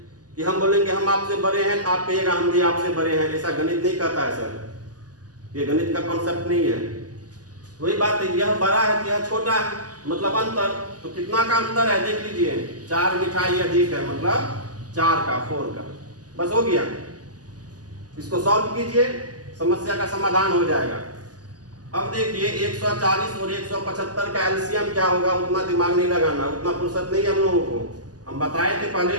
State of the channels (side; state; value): left; late; 0.68 ms